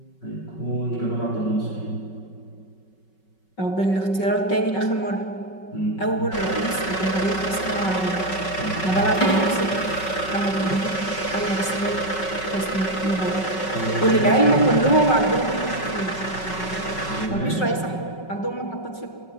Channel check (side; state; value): right; late; 5.3 ms